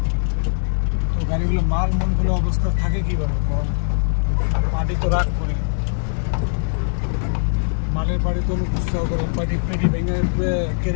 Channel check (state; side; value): silent; right; digital silence